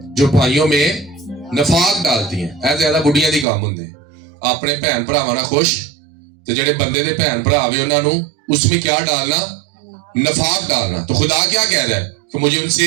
جو بھائیوں میں نفاق ڈالتی ہیں. اے زیادہ بڑھیاں دی کام ہوندے اپنے بہن بھراواں نال خوش تے جڑے بندے دے بہن بھرا وے انہاں نو اس میں کیا ڈالنا؟ نفاق ڈالنا. تو خدا کیا کہہ رہا ہے کہ مجھے ان سے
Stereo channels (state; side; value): drops out; left; at 3.5 s